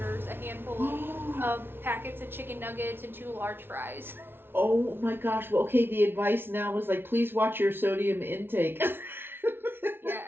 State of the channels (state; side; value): late; left; 0.11 ms